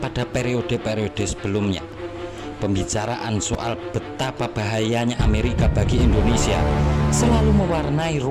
periode-periode sebelumnya. Pembicaraan soal betapa bahayanya Amerika bagi Indonesia selalu mewarnai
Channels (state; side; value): identical; both; correlation 1.00